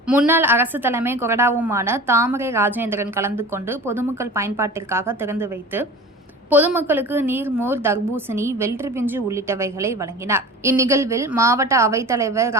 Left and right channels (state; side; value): normal; both; correlation 0.37